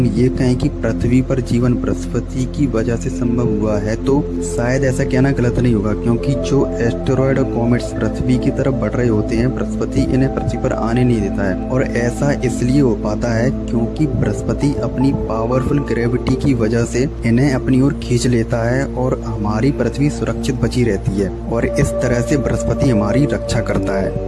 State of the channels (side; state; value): both; identical; correlation 1.00